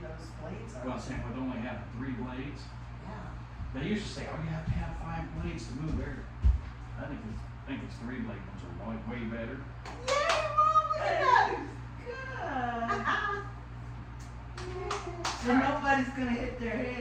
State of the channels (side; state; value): both; identical; correlation 1.00